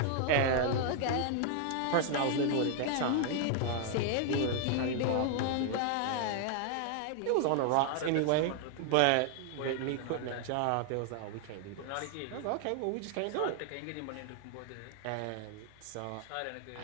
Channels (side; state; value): both; different; correlation 0.00